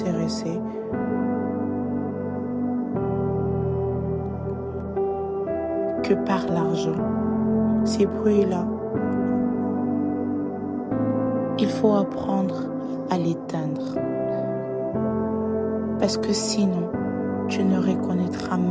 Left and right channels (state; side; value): identical; both; correlation 1.00